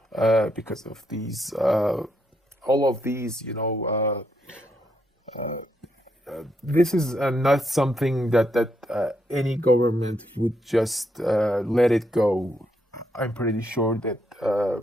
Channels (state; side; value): normal; both; correlation 0.78